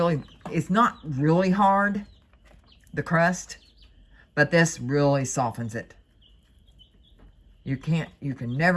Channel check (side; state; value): both; identical; correlation 1.00